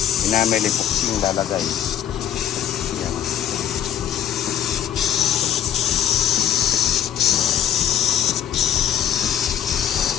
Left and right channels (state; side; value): quieter; right; 10.1 dB